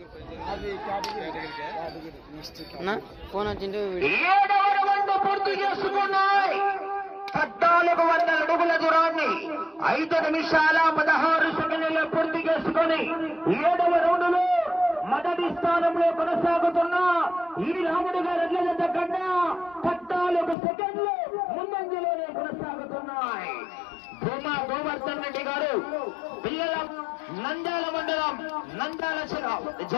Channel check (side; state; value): right; drops out; at 20.6 s